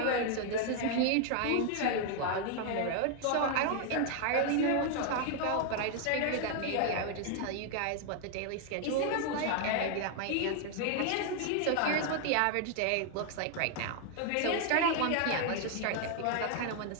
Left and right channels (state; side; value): different; both; correlation 0.00